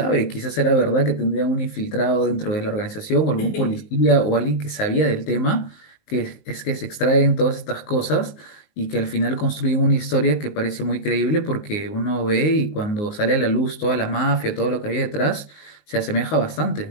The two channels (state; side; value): late; right; 19 ms